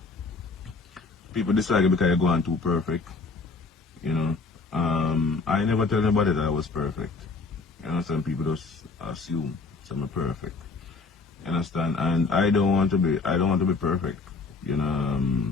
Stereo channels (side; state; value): right; quieter; 4.1 dB